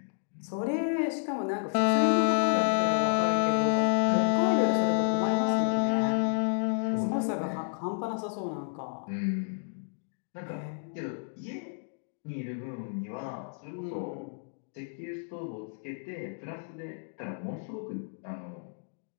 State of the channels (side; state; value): right; silent; digital silence